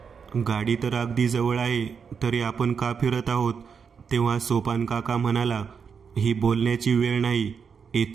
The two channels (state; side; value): quieter; left; 6.3 dB